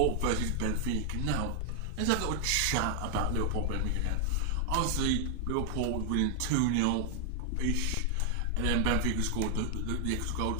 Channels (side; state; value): both; different; correlation 0.00